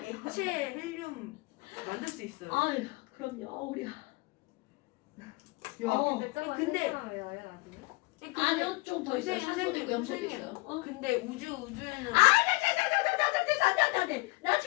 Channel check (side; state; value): right; quieter; 24.0 dB